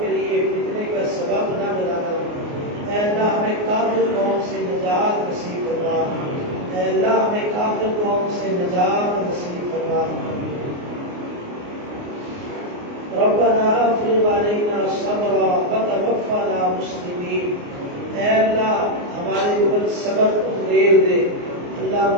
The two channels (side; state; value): left; late; 29 ms